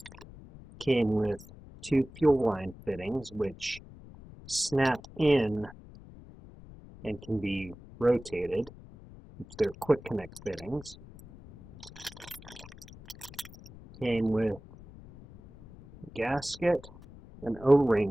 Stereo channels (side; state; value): left; noise; rumble, 18 dB below the sound